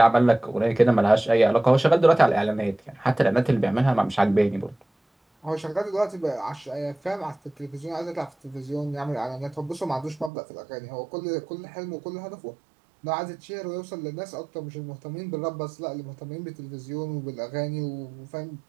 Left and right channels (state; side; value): drops out; left; at 10.3 s